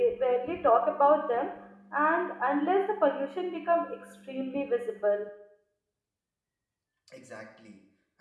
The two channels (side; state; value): both; identical; correlation 1.00